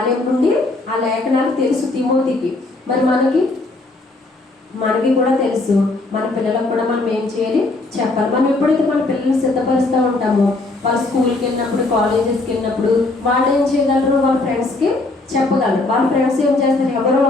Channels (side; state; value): right; quieter; 3.1 dB